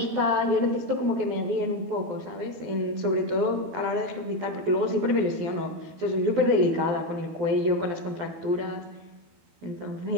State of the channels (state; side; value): late; left; 12 ms